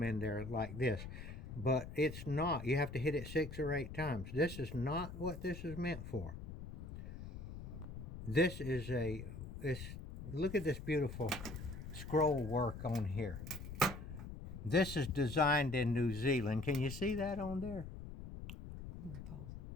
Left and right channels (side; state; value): left; noise; rumble, 10 dB below the sound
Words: in there like this, but it's not. You have to hit it 6 or 8 times. This is not what this is meant for. This is look at this beautiful scroll work on here. This is designed in New Zealand. Can you see that on there?